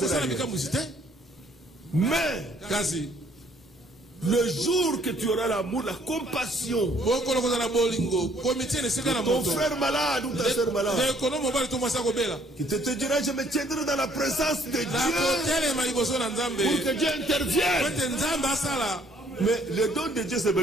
Mais le jour que tu auras l'amour, la compassion de ton frère malade ou ta soeur malade, qui te dira, je me tiendrai dans la présence de Dieu pour que Dieu intervienne. Mais le don de Dieu se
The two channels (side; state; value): both; normal; correlation 0.63